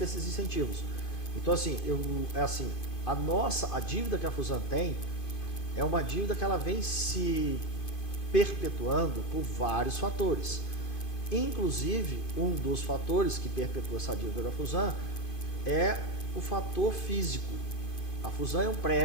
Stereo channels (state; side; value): late; right; 2.5 ms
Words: esses incentivos. Então, assim, a dívida que a Fusan tem é uma dívida que ela vem se perpetuando por vários fatores. Inclusive, um dos fatores que perpetua essa dívida da Fusan é o fator físico. A Fusan é um